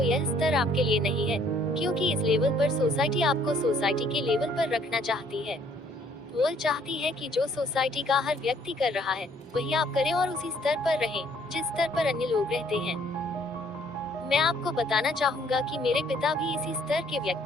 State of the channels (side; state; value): both; normal; correlation 0.63